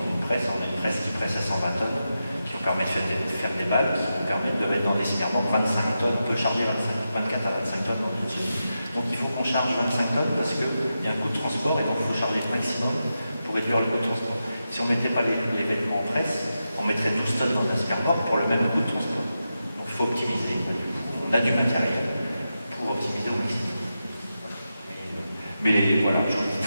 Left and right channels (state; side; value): inverted; both; correlation -0.89